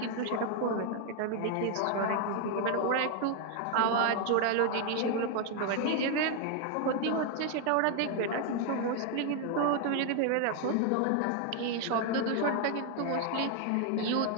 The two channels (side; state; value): both; different; correlation 0.00